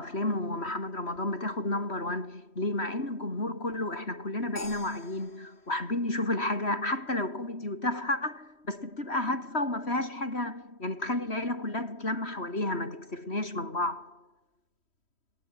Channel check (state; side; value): late; right; 3.1 ms